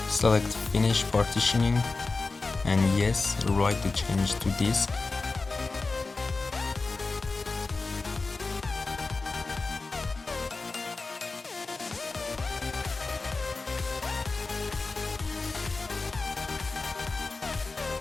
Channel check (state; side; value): quieter; right; 3.8 dB